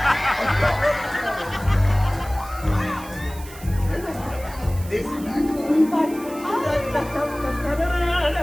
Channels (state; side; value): noise; right; hiss, 18 dB below the sound